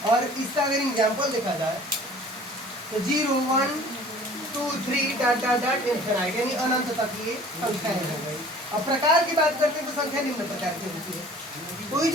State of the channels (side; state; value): both; normal; correlation 0.48